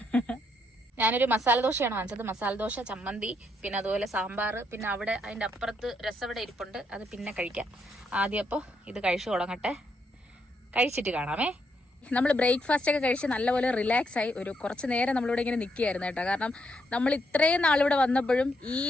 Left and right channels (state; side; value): normal; both; correlation 0.77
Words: ഞാനൊരു മസാല ദോശയാണ് വാങ്ങിച്ചത്. മസാല ദോശ, ചമ്മന്തി, പിന്നെ അതുപോലെ സാമ്പാർ, പിന്നെ അവിടെ അതിന്റെ അപ്പുറത്ത് രസവട ഇരിപ്പുണ്ട്. അത് പിന്നെ കഴിക്കാം. ആദ്യം അപ്പോൾ ഇത് കഴിച്ചു തുടങ്ങട്ടെ, കഴിച്ചിട്ട് കാണാമേ. നമ്മൾ ബ്രേക്ക്ഫാസ്റ്റ് ഒക്കെ കഴിച്ച് നല്ലപോലെ റിലാക്സ് ആയി ഒരു കുറച്ച് നേരം നമ്മളിവിടെ ഇങ്ങനെ നിൽക്കുകയായിരുന്നു കേട്ടോ. കാരണം നമ്മൾ ഇത്രയും നാളിവിടെ വന്നപ്പോഴും ഈ